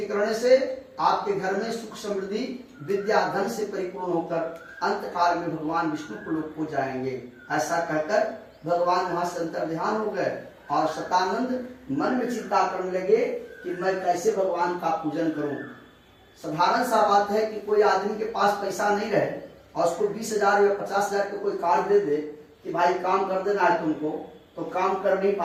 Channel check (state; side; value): identical; both; correlation 1.00